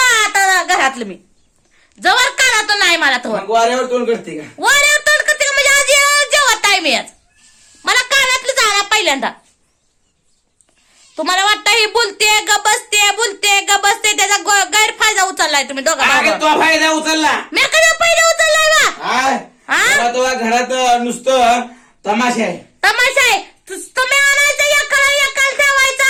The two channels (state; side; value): identical; both; correlation 1.00